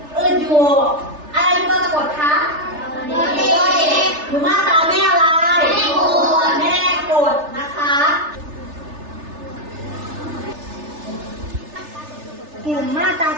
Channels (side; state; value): left; late; 3.3 ms